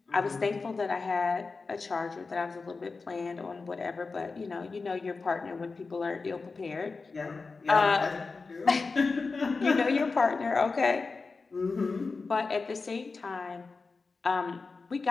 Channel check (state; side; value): quieter; right; 4.2 dB